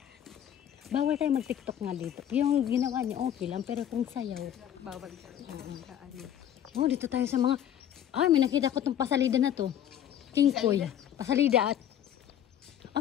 Bawal tayo mag-TikTok nga dito. Yung ginawa niya okay lang, pero kung sayaw. Bawal siya. Oh, dito tayo sa mga... Ay, may nakita ko tong pasalida na to. King Koy. Pasalida at...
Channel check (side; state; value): right; quieter; 10.4 dB